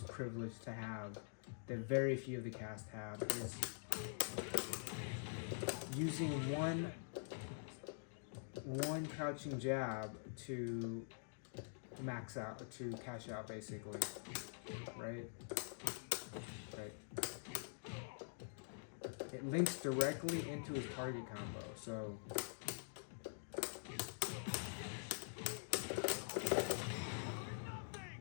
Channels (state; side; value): silent; right; digital silence